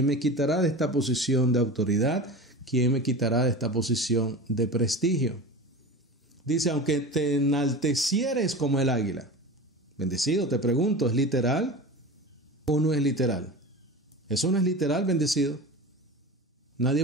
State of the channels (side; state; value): both; normal; correlation 0.31